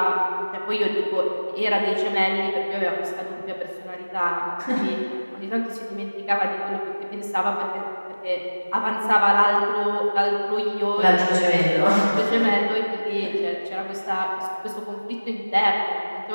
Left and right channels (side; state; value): both; inverted; correlation -1.00